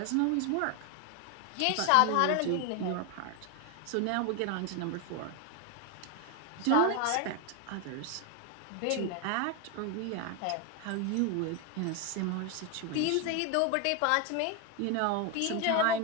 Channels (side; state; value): both; different; correlation 0.01